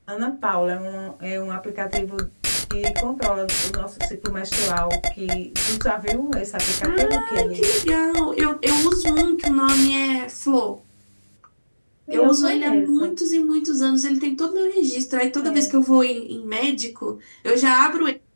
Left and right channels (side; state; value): both; inverted; correlation -1.00